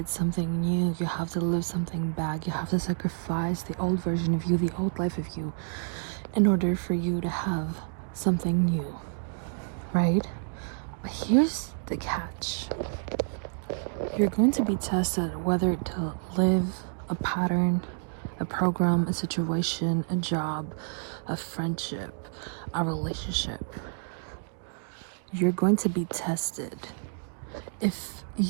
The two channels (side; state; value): left; silent; 59 dB below the other